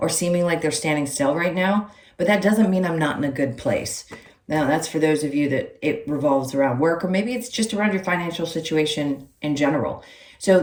seeming like they're standing still right now, but that doesn't mean I'm not in a good place. Now, that's for those of you that it revolves around work, or maybe it's just around your financial situation in general. So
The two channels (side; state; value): both; identical; correlation 1.00